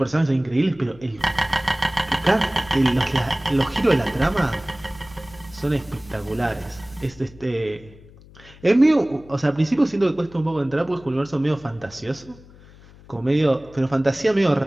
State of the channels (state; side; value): noise; left; hum, 23 dB below the sound